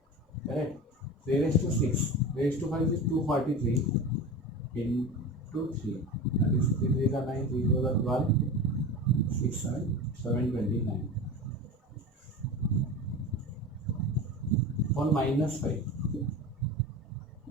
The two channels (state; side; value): normal; both; correlation 0.30